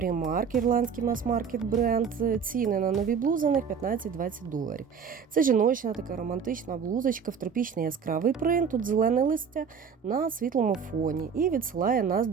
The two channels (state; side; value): quieter; left; 6.5 dB